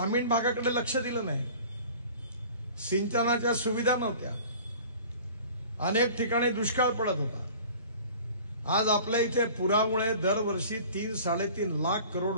भागाकडे लक्ष दिलं नाही. सिंचनाच्या सुविधा नव्हत्या, अनेक ठिकाणी दुष्काळ पडत होता. आज आपल्या इथे पुरामुळे दरवर्षी 3-3.5 लाख करोड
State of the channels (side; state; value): both; inverted; correlation -0.44